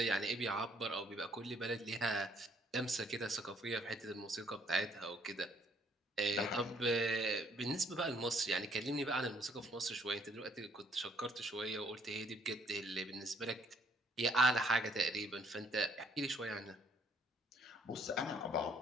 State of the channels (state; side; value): normal; both; correlation 0.64